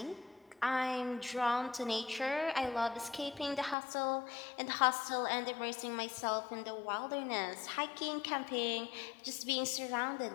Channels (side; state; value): right; drops out; at 3.8 s